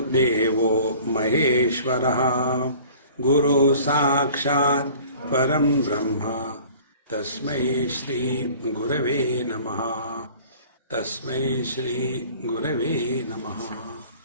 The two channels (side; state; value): both; inverted; correlation -0.48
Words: Devo Maheshwaraha, Guru Sakshat Param Brahma, Tasmai Shri Gurave Namaha, Tasmai Shri Gurave Namaha.